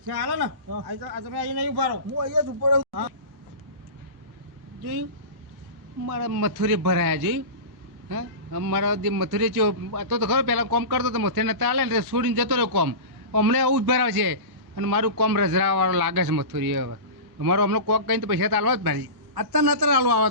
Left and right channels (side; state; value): left; late; 1.1 ms